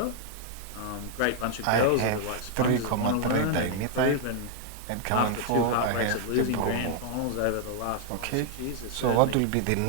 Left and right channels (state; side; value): different; both; correlation -0.01